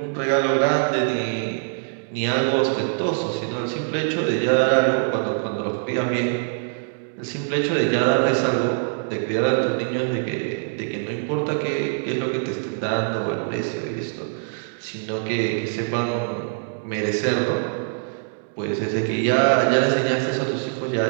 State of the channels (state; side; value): silent; left; digital silence